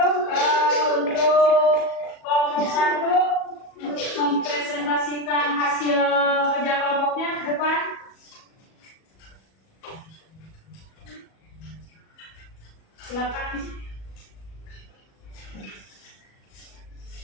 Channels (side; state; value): right; late; 37 ms